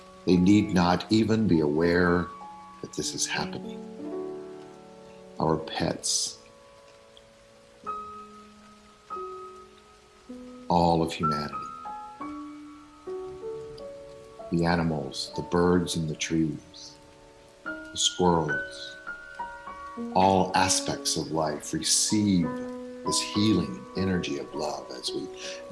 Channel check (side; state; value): both; identical; correlation 1.00